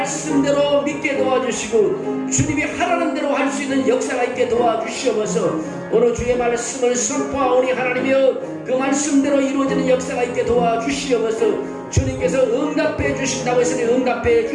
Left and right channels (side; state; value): both; identical; correlation 1.00